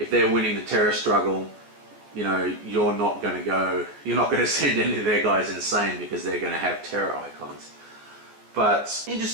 they're winning the terror struggle, you're not going to send any of their guys insane because they're going to have terror icons. But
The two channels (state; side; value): late; left; 14 ms